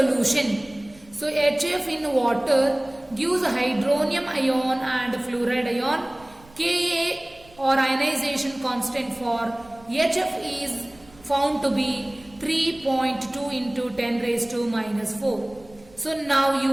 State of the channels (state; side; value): noise; right; rumble, 26 dB below the sound